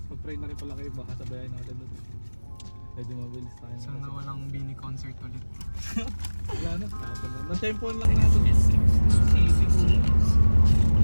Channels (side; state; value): both; inverted; correlation -1.00